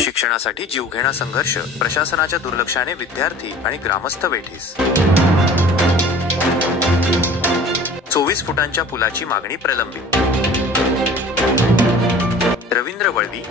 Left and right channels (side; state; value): both; normal; correlation 0.44